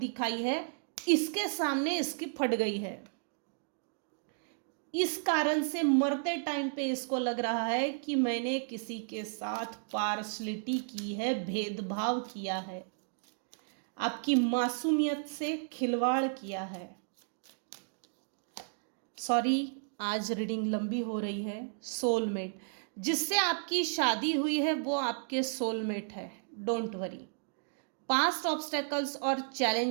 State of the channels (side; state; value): left; silent; digital silence